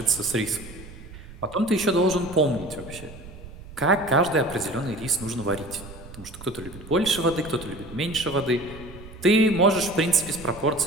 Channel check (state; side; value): noise; right; rumble, 16 dB below the sound